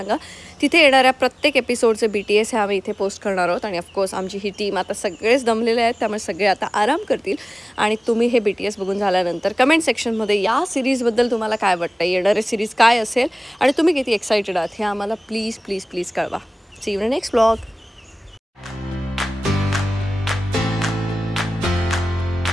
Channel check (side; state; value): both; normal; correlation 0.98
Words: तिथे येणाऱ्या प्रत्येक एपिसोडचे BTS हे आम्ही इथे पोस्ट करणार आहोत. आणि ऑफकोर्स आमची ही टीम आता सगळेच दमलेले आहेत, त्यामुळे सगळे आता आराम करतील. आणि तुम्ही हे BTS बघून झाल्यानंतर कमेंट सेक्शनमध्ये या सिरीजबद्दल तुम्हाला काय वाटतं, येणारे सिरीज काय असेल आणि तुम्ही किती एक्सायटेड आहात हे आम्हाला प्लीज प्लीज प्लीज कळवा. See you in next vlog.